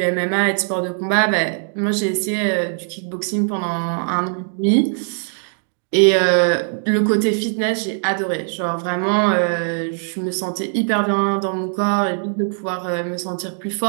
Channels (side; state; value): left; silent; 56 dB below the other